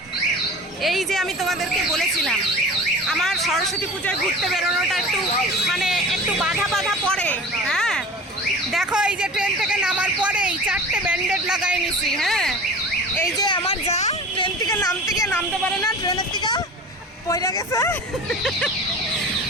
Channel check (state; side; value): normal; both; correlation 0.38